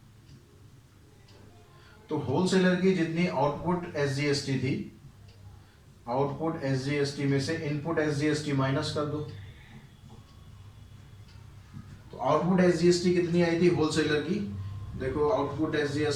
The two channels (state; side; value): identical; both; correlation 1.00